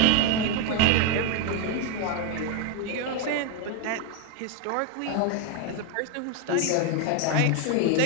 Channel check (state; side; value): different; both; correlation 0.01